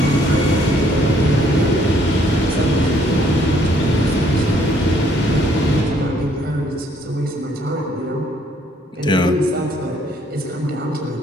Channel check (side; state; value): both; normal; correlation 0.66